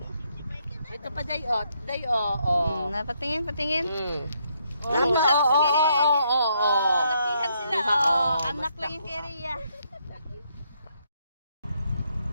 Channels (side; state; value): both; inverted; correlation -0.74